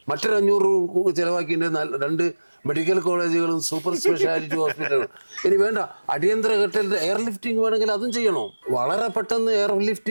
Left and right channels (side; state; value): both; inverted; correlation -1.00